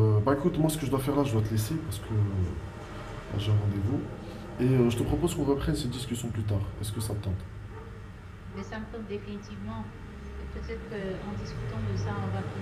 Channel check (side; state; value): both; identical; correlation 1.00